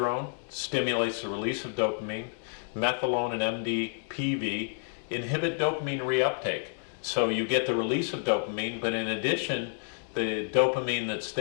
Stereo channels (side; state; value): right; silent; digital silence